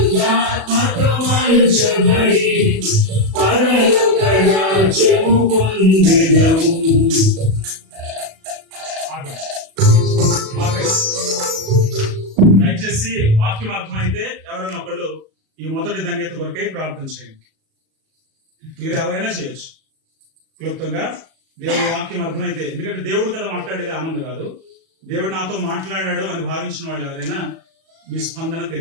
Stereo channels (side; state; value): left; late; 37 ms